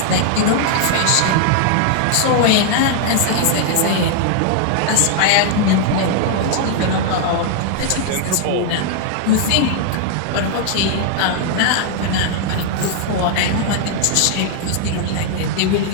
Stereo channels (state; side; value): different; both; correlation 0.00